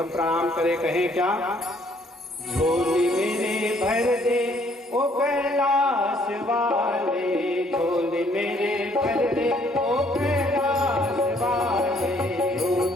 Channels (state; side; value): normal; both; correlation 0.64